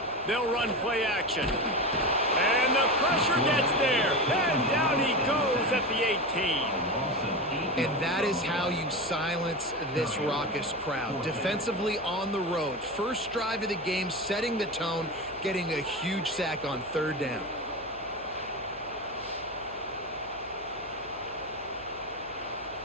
They'll run play action. And the pressure gets there. And down he goes at the 18. And that is how you silence this raucous crowd. Defensively on the road. First drive of the game, setting the tone, getting a huge sack on 3rd down.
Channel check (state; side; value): noise; left; hum, 23 dB below the sound